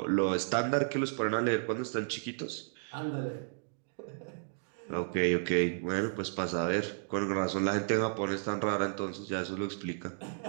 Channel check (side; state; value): left; silent; digital silence